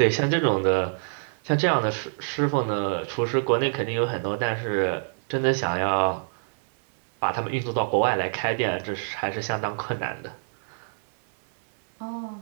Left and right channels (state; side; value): silent; left; digital silence